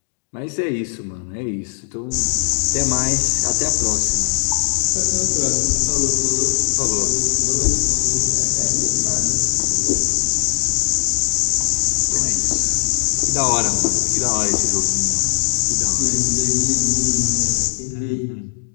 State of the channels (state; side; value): silent; right; digital silence